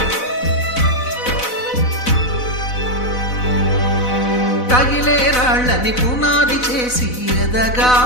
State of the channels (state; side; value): late; right; 4.0 ms